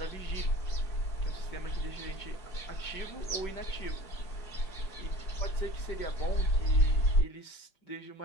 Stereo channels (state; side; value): late; right; 5.2 ms